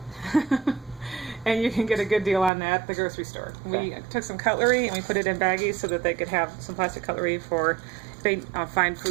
And you can get a good deal on that at the grocery store. Okay. We took some cutlery and we put it in baggies so that they could have some plastic cutlery for they find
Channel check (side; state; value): left; drops out; at 2.5 s